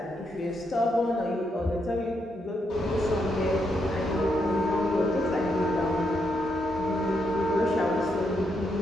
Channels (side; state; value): both; normal; correlation 0.79